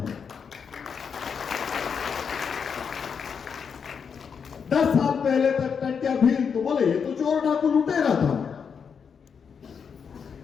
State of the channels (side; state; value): right; quieter; 6.5 dB